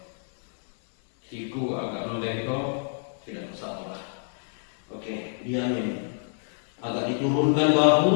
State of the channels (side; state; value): right; silent; 60 dB below the other